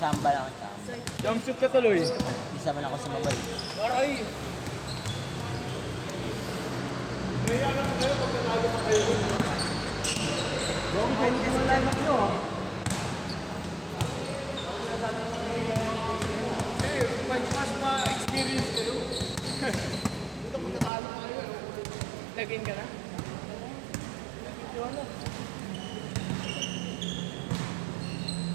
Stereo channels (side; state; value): left; drops out; at 20.9 s